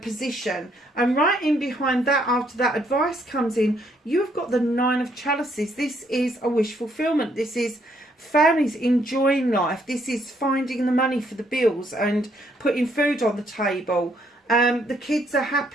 position. And right in behind that, after that advice comes in, you've got the 9 of chalices. This is a wish fulfillment. This is families enjoying life. This is finding the money for the bills and putting food on the table. The kids are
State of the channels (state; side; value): normal; both; correlation 0.70